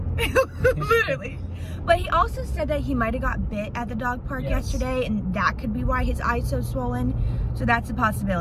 Literally. But he also said that he might have got bit at the dog park yesterday, and that could be why his eye's so swollen. So that's a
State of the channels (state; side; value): identical; both; correlation 1.00